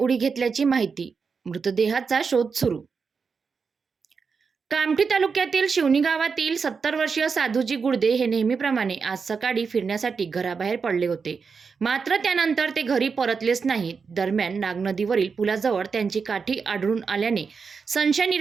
घेतल्याची माहिती. मृतदेहाचा शोध सुरू. कामठी तालुक्यातील शिवणी गावातील 70 वर्षीय साधूजी गुडदे हे नेहमीप्रमाणे आज सकाळी फिरण्यासाठी घराबाहेर पडले होते. मात्र त्यानंतर ते घरी परतलेच नाहीत. दरम्यान नागनदीवरील पुलाजवळ त्यांची काठी आढळून आल्याने संशय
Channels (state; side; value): quieter; left; 5.4 dB